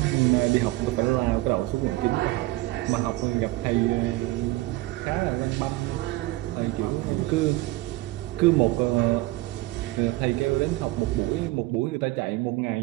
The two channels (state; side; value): quieter; left; 18.9 dB